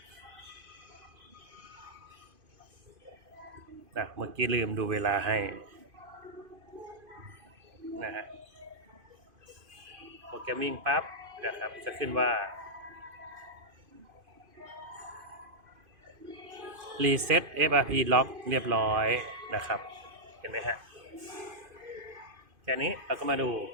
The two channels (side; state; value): left; late; 2.5 ms